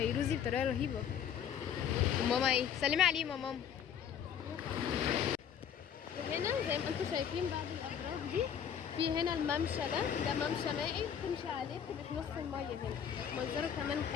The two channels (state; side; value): quieter; right; 8.5 dB